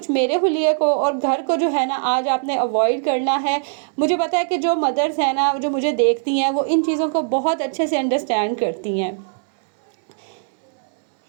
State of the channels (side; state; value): left; silent; digital silence